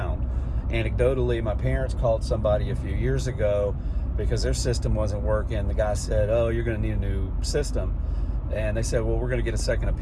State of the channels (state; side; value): identical; both; correlation 1.00